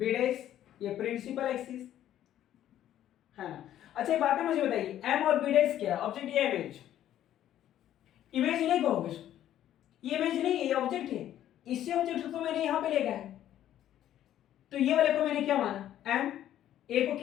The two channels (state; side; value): quieter; right; 11.8 dB